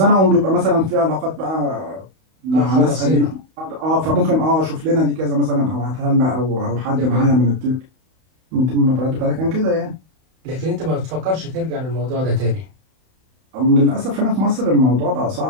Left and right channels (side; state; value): left; late; 31 ms